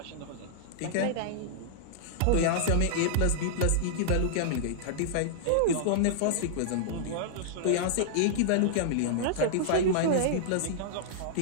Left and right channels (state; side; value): different; both; correlation -0.02